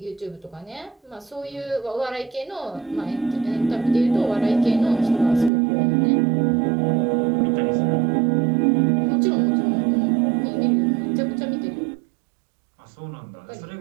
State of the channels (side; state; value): left; drops out; at 5.5 s